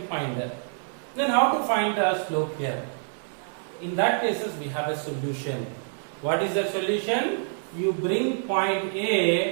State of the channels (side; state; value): left; silent; 60 dB below the other